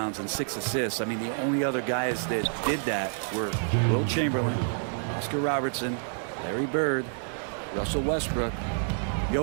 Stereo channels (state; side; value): silent; left; digital silence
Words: and 6 assists. I mean, the only other guys that did that were Will Chamberlain, Oscar Robertson, Larry Bird, Russell Westbrook,